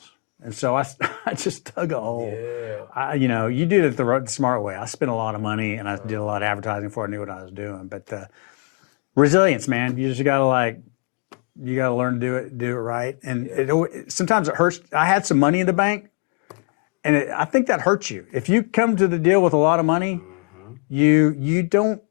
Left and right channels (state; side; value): quieter; right; 37.7 dB